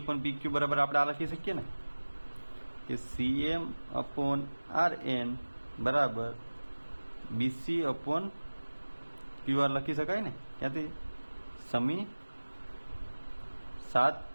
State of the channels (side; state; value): both; inverted; correlation -1.00